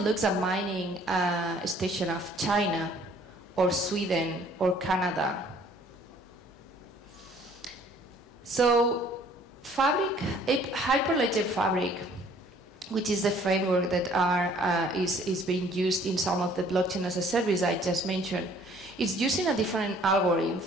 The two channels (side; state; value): both; normal; correlation 0.57